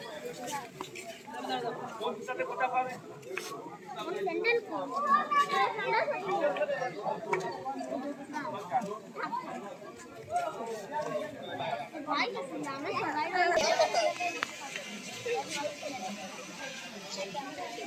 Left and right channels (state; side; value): identical; both; correlation 1.00